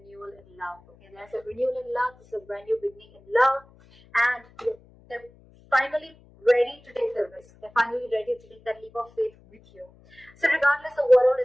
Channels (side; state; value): left; noise; hum, 27 dB below the sound